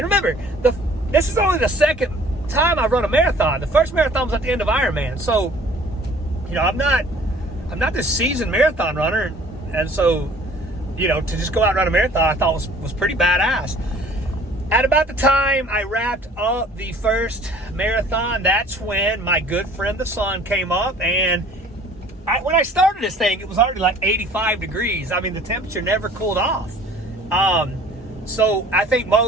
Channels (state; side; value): normal; both; correlation 0.52